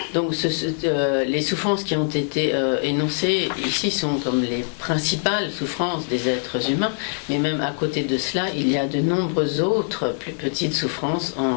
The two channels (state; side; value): silent; right; 63 dB below the other